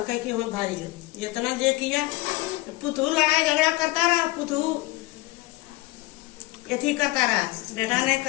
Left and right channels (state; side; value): quieter; right; 20.5 dB